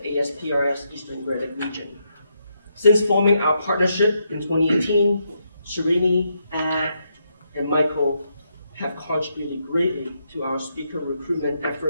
ASPRS Eastern Great Lakes region. Since forming our partnership in 2018, Srini, Ad, and Michael have contributed greatly to our speaker recruitment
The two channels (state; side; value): inverted; both; correlation -0.79